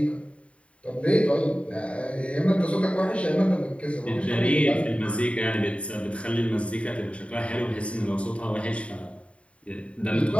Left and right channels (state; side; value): late; right; 0.063 ms